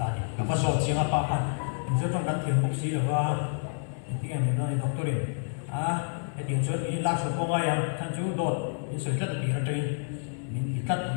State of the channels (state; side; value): silent; right; digital silence